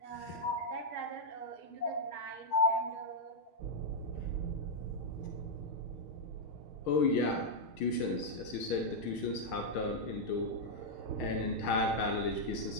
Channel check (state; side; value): late; right; 6.5 ms